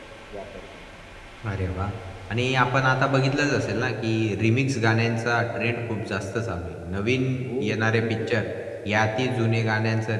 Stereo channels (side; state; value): both; identical; correlation 1.00